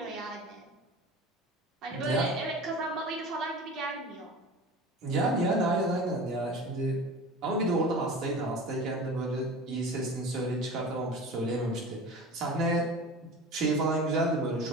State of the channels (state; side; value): normal; both; correlation 0.36